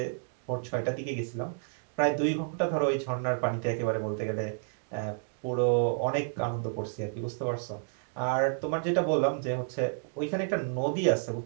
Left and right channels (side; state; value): left; silent; digital silence